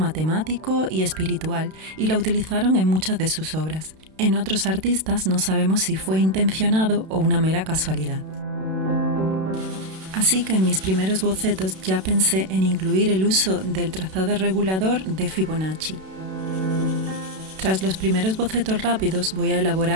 y espiritual y la utilizaron en muchas de sus obras. En otros artistas no sabemos si fue intencionado o una mera casualidad. Así que en mis primeros bocetos ya pensé en incluir el uso del trazado regulador de Fibonacci. Tras los primeros bocetos rápidos voy a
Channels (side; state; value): left; late; 32 ms